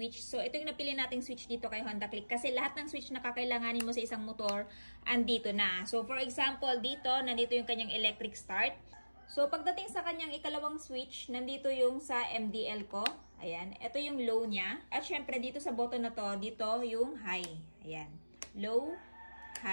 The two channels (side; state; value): both; inverted; correlation -1.00